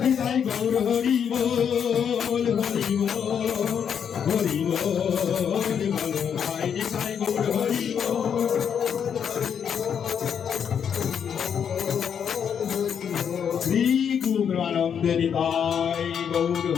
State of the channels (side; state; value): right; quieter; 7.8 dB